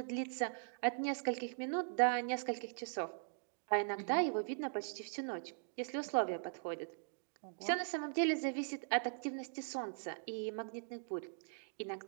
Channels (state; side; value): silent; left; digital silence